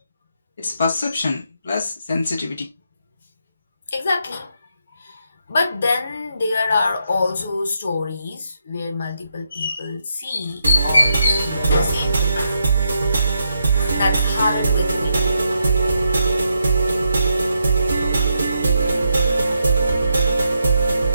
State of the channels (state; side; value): inverted; both; correlation -0.81